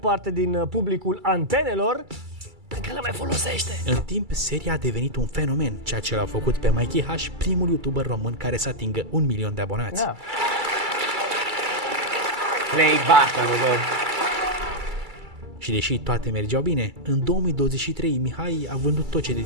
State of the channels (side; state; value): left; late; 2.3 ms